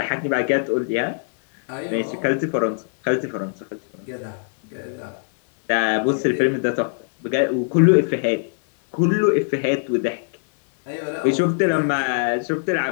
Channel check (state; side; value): silent; right; 61 dB below the other